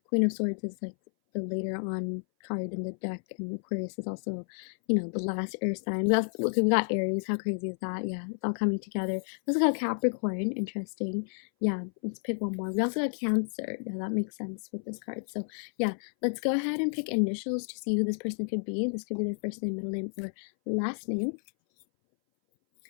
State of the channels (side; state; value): right; silent; 57 dB below the other